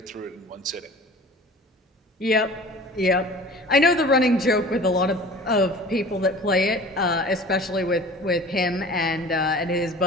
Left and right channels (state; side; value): normal; both; correlation 0.43